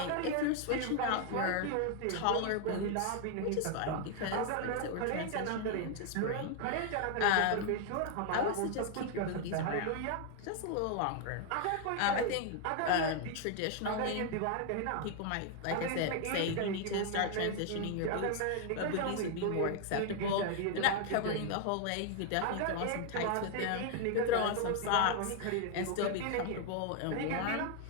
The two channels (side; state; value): both; different; correlation 0.00